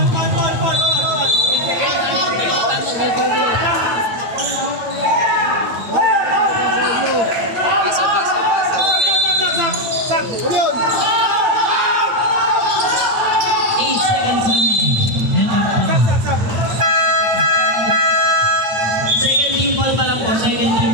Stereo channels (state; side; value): late; left; 9.0 ms